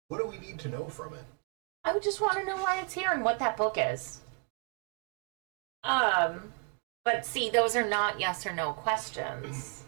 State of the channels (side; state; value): left; quieter; 35.7 dB